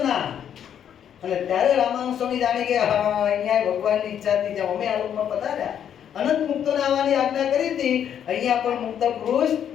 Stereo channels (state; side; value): quieter; right; 9.2 dB